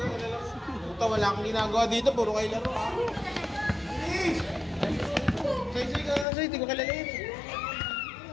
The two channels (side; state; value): right; drops out; at 6.2 s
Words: Puta, wala akong ginagawa dito. Puro kayo laro. Soy. Di ko kilala yun.